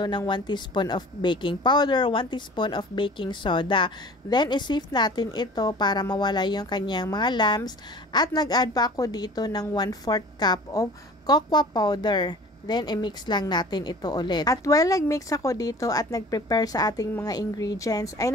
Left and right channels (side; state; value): both; normal; correlation 0.44